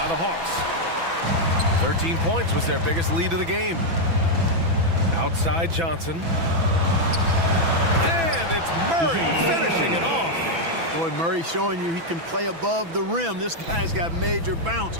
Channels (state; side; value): late; left; 6.0 ms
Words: the Hawks. 13 points was their biggest lead of the game. Outside Johnson. And it's Murray finishing it off. Boy, Murray showing you he can play above the rim. This guy's got major bounce